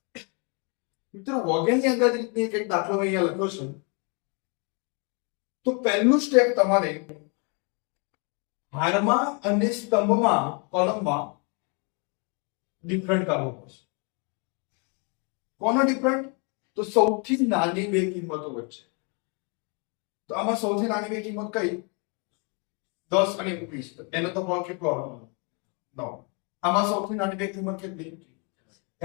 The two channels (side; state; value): right; quieter; 35.2 dB